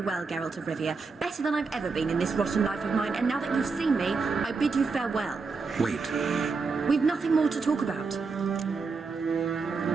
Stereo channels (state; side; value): quieter; left; 4.5 dB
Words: well, Geralt of Rivia. Better than I've ever been in this rotten life of mine, and now that you've seen me, I bid you farewell. Wait. We've nothing more to talk about.